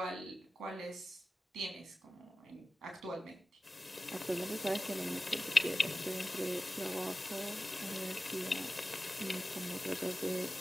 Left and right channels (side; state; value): both; normal; correlation 0.95